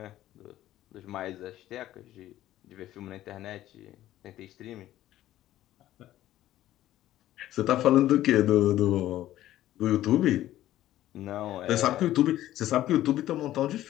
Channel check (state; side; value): quieter; right; 13.8 dB